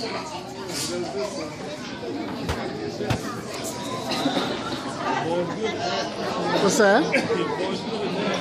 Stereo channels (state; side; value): identical; both; correlation 1.00